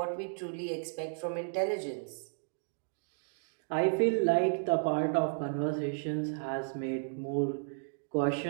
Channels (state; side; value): silent; left; digital silence